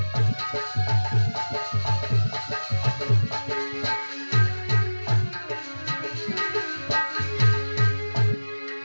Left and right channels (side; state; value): both; inverted; correlation -1.00